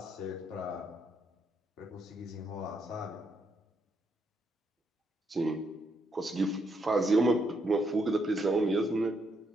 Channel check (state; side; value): normal; both; correlation 0.76